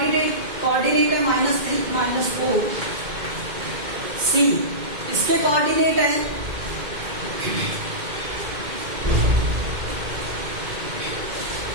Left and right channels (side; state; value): left; late; 2.1 ms